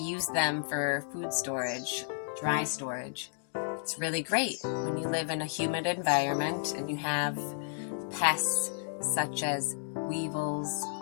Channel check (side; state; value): right; silent; digital silence